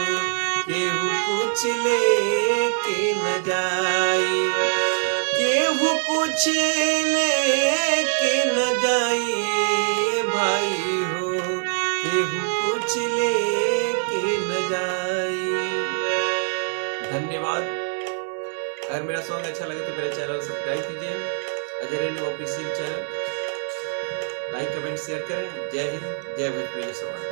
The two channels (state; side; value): silent; left; digital silence